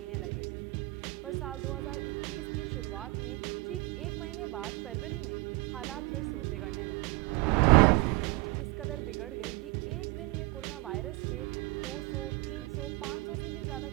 लगे थे। पर साल 2021 की शुरुआत में ठीक एक महीने बाद फरवरी में हालात फिर से बिगड़ने लगे। मार्च में स्थिति कुछ इस कदर बिगड़ गई कि एक दिन में कोरोना वायरस के 200, 300, 500 से भी ज़्यादा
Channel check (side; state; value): left; quieter; 23.0 dB